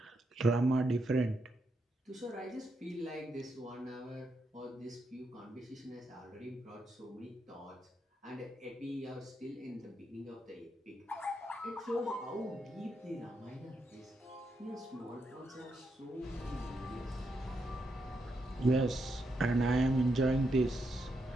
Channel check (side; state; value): both; normal; correlation 0.81